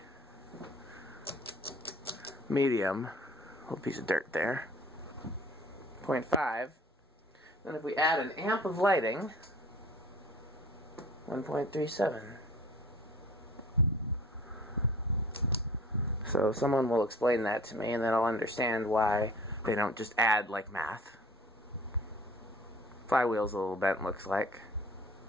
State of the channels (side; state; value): both; normal; correlation 0.48